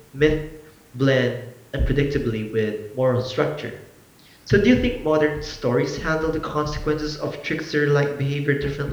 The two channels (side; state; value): both; identical; correlation 1.00